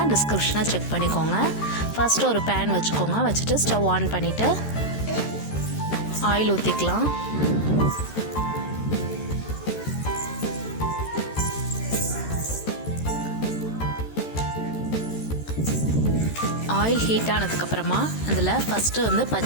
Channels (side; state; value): right; late; 13 ms